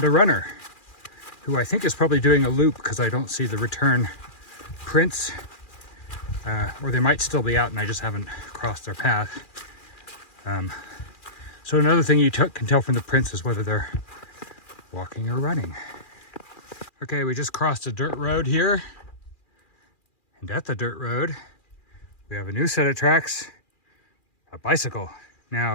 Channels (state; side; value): late; right; 2.4 ms